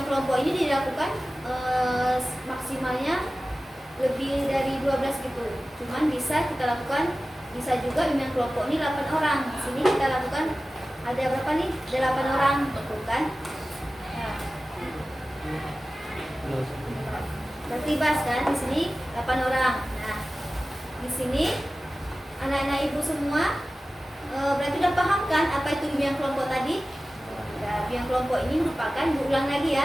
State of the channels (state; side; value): normal; both; correlation 0.96